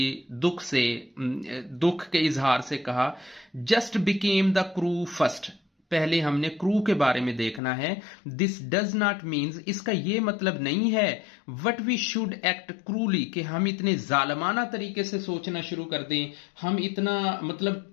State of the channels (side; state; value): right; drops out; at 7.6 s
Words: दुख के इजहार से कहा, just became the crew first. पहले हमने क्रू के बारे में देखना है। दिस डज नॉट मीन्स, इसका यह मतलब नहीं है वट वी शुड एक्ट क्रूली, कि हम इतने जालमाना तरीके से सोचना शुरू कर दें,